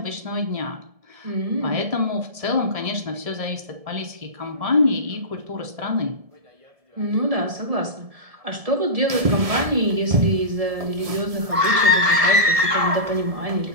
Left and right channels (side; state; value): left; late; 1.7 ms